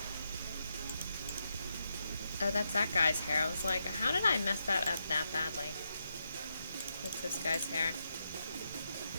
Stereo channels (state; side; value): inverted; both; correlation -0.83